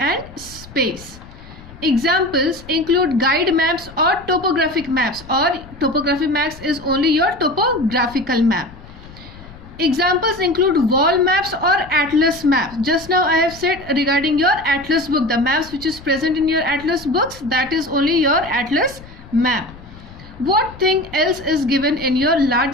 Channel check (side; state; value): left; noise; rumble, 19 dB below the sound